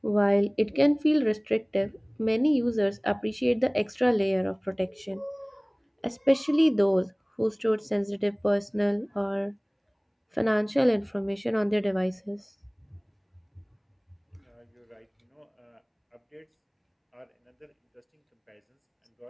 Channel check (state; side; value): identical; both; correlation 1.00